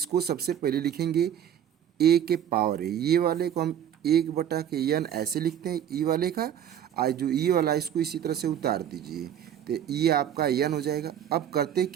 सबसे पहले लिखेंगे ए के पावर है। ये वाले को हम 1/के यन ऐसे लिखते हैं ई वाले का। आज जो ई वाला इसको इसी तरह से उतार दीजिए तो ये आपका यन हो जाएगा। अब करते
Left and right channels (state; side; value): quieter; left; 9.8 dB